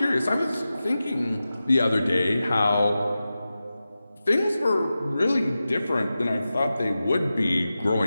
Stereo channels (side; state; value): both; inverted; correlation -0.93